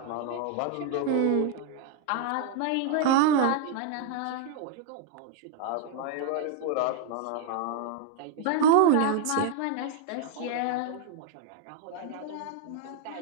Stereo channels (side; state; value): both; different; correlation 0.00